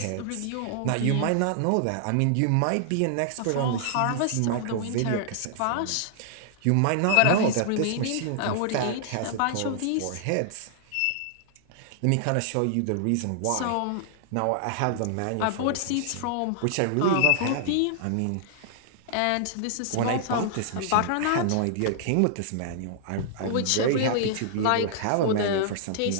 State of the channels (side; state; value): both; different; correlation -0.01